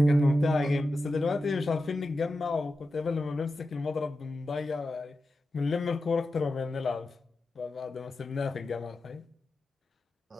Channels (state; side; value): normal; both; correlation 0.92